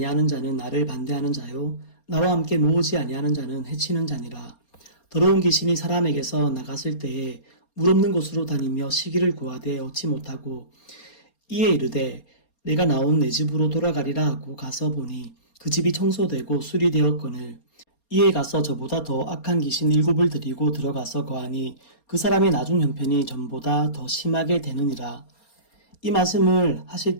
자는 나를 반대하는 자요 나와 함께 모으지 아니하는 자는 해치는 자니라. 더러운 귀신이 사람에게서 나갔을 때에 물 없는 곳으로 다니며 시기를 구하되 얻지 못하고 이에 이르되 내가 나온 내 집으로 돌아가리라 하고 가서 보니 그 집이 청소되고 수리되었거늘 이에 가서 저보다 더 악한 귀신 7을 들이고 들어가서 거하니 그 사람의 나중 형편이 전보다 더 심하게 되느니라. 이 말씀을 하실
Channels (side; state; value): right; late; 4.3 ms